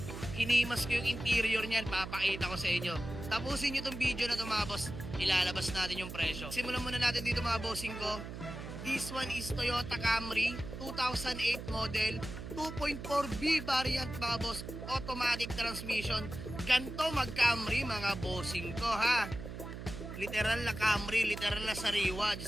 Hinimas ko yung interior niyan, papakita ko sa inyo. Tapusin nyo itong video na ito mga boss, ilalabas natin yung presyo. Simulan muna natin dito mga bossing ko. This one is Toyota Camry 2008 model, 2.4B variant mga boss, automatic transmission. Ganto mag-Camry mga bossing ko ha. Literal na Camry, literal na sariwa,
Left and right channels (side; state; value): right; noise; hum, 9 dB below the sound